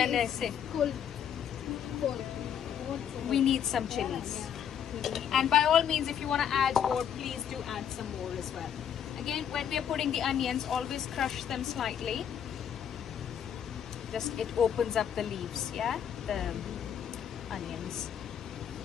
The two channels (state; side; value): quieter; right; 8.7 dB